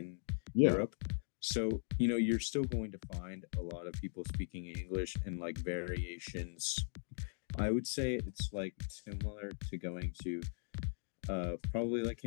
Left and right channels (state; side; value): silent; right; digital silence